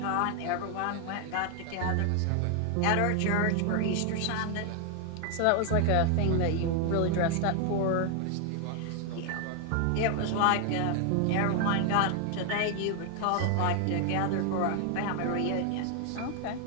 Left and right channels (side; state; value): both; different; correlation 0.00